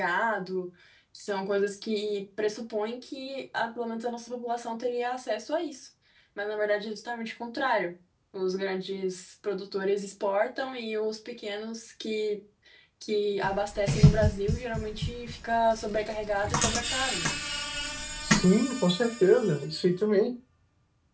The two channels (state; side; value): identical; both; correlation 1.00